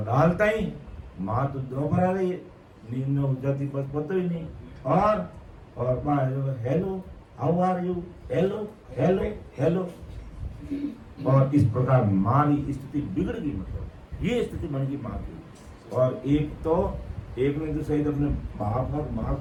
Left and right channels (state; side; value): identical; both; correlation 1.00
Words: डालता ही माँ तो दोपहर आ रही है, नींद में उठ जाती बस पता ही नहीं। और hello how are you, hello hello hello. और इस प्रकार माँ की स्थिति बिगड़ गई, मतलब ये स्थिति बन गई माँ की। और एक ने तो सही अपने माँ